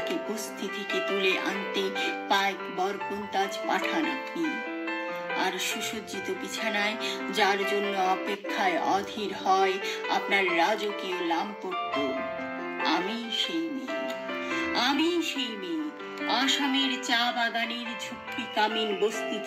বস্তি থেকে তুলে আনতে পাইক বরকন্তাজ পাঠান আপনি, আর সুসজ্জিত বিছানায় যার জন্য অপেক্ষায় অধীর হয় আপনার রাজকীয় লামপট্ট, আমি সেই মেয়ে। আমি সেই মেয়ে আসামের চা বাগানের ঝুপড়ি কামিন বস্তি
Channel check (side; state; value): both; identical; correlation 1.00